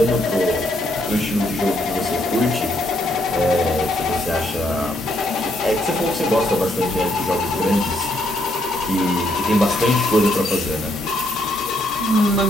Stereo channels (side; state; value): both; normal; correlation 0.73